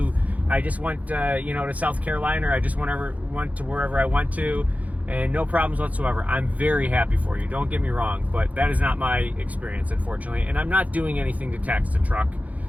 I just went to South Carolina, or I just went to wherever I went to, and no problems whatsoever. I'm very happy for you. Don't get me wrong, but that is not my experience, unfortunately. And I'm not doing anything to tax the truck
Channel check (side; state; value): left; late; 0.073 ms